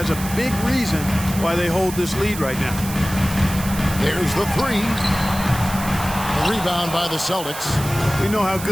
A big reason why they hold this lead right now. There's the three. The rebound by the Celtics. We know how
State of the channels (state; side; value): noise; right; hiss, 10 dB below the sound